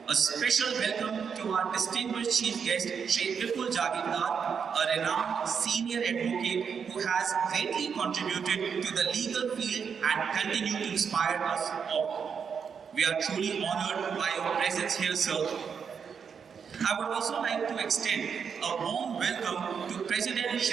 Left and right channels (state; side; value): quieter; left; 6.6 dB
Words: A special welcome to our distinguished chief guest, Shri Vipul Jagirdar, a renowned senior advocate who has greatly contributed to the legal field and continue to inspire us all. We are truly honored by your presence here, sir. I would also like to extend a warm welcome to President